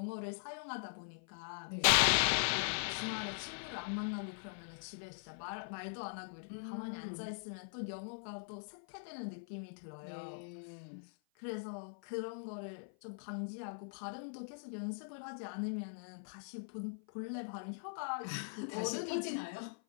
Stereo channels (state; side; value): silent; right; 50 dB below the other